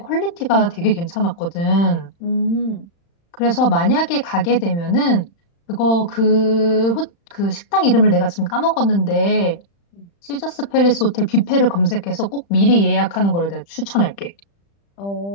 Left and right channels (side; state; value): right; late; 35 ms